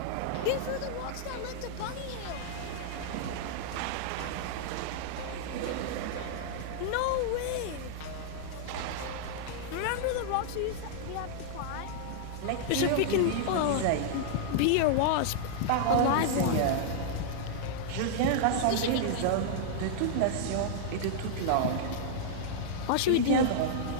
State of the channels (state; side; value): different; both; correlation -0.01